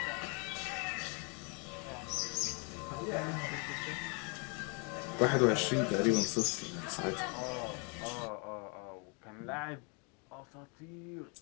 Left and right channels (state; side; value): quieter; right; 34.3 dB